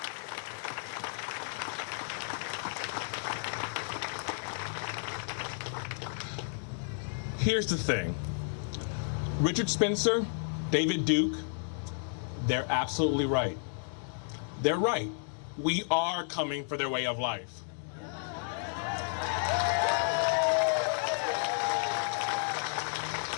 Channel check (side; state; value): right; silent; digital silence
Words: Here's the thing. Richard Spencer, David Duke, they're absolutely right. They're right. We are coming for their way of life.